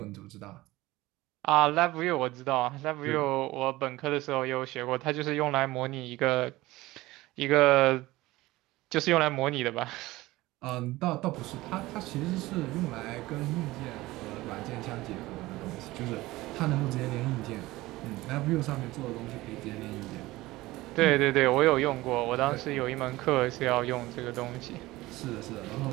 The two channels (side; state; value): left; quieter; 18.7 dB